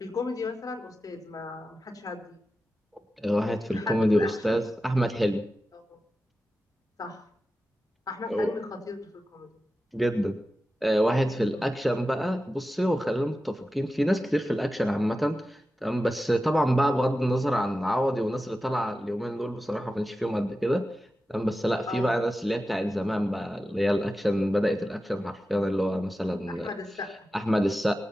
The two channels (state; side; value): normal; both; correlation 0.93